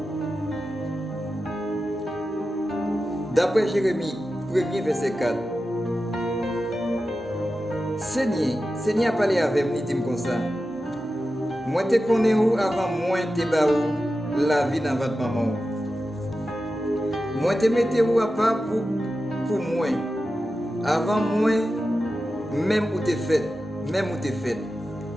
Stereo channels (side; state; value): both; normal; correlation 0.92